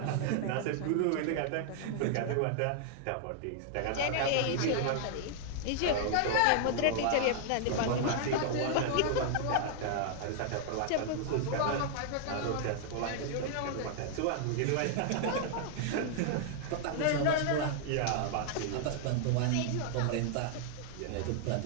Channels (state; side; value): different; both; correlation -0.01